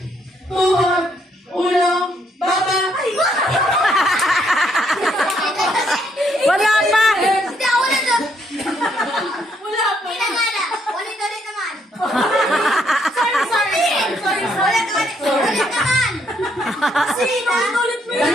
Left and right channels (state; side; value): normal; both; correlation 0.72